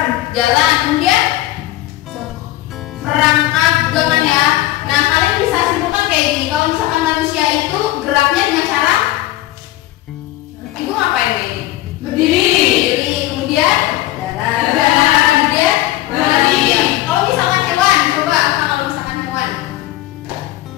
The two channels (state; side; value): quieter; right; 15.9 dB